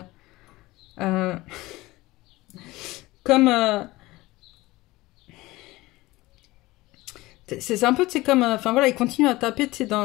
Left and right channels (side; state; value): right; quieter; 19.5 dB